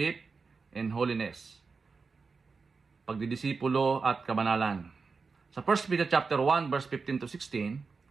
and Holiness. Pagdidisipulo at kabanalan. Sa 1 Peter chapter 1 verse 15 to 16,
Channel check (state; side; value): quieter; left; 4.7 dB